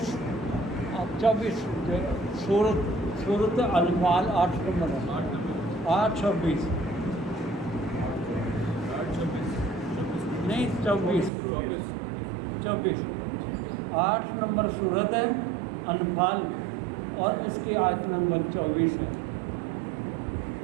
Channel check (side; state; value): left; drops out; at 11.3 s